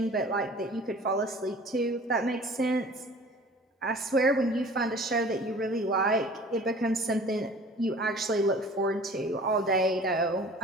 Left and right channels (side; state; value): both; normal; correlation 0.46